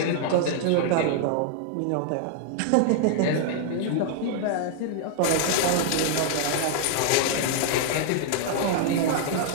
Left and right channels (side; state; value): both; different; correlation -0.01